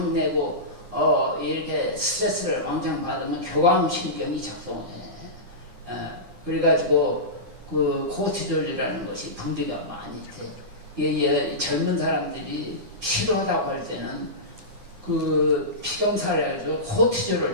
내고 이렇게 스트레스를 왕창 받으면 교감 신경이 작동해. 그래가지고 그 코티졸이라는 것이 분비가 많이 돼. 젊은 사람들이 필요하다고 할 때는 그 피검사를 해서 코티졸을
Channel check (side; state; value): left; late; 9.9 ms